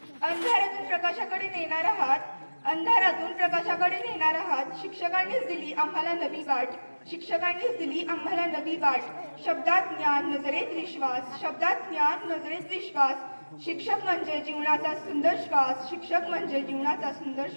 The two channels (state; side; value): inverted; both; correlation -1.00